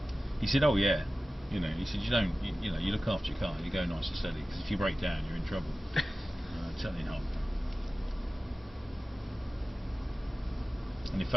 He said, oh yeah. You know, he said, you look after your car. You go nice and steady, because if you break down, you're in trouble. Certainly not. And in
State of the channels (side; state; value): both; normal; correlation 0.95